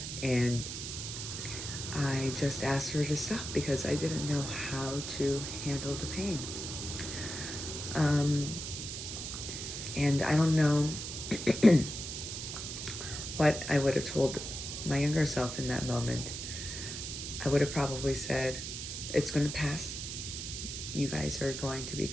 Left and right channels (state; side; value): noise; right; hiss, 6 dB below the sound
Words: And I just asked her to stop because I didn't know how to handle the pain. And I don't know what I would have told my younger self in that moment. I would have probably said, it's going to pass. You guys are going to